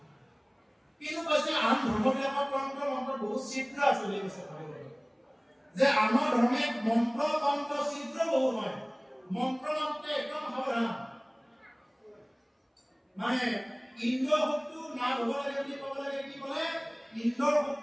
কিন্তু কৈছে আন ধৰ্মবিলাকৰ তন্ত্ৰ মন্ত্ৰ বহুত শীঘ্ৰ আছে বুলি কৈছে ভাগৱতত যে আমাৰ ধৰ্মে মন্ত্ৰ তন্ত্ৰ চিত্ৰ বহু হয় মন্ত্ৰ মন্ত্ৰে একদম সাৱধান মানে ইন্দ্ৰ শক্তি না হ'ব লাগে বুলি ক'ব লাগে কি ক'লে ইন্দ্ৰ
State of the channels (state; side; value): identical; both; correlation 1.00